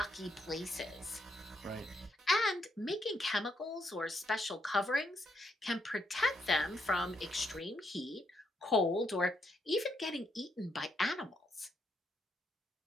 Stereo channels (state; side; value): normal; both; correlation 0.76